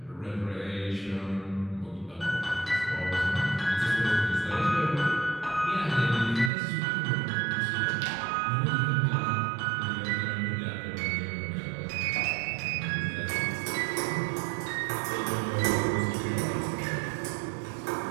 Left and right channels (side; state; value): left; drops out; at 6.5 s